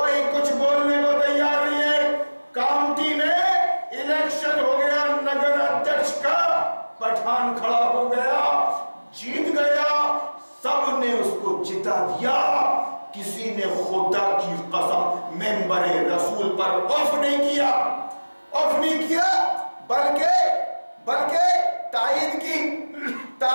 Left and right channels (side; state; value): both; inverted; correlation -1.00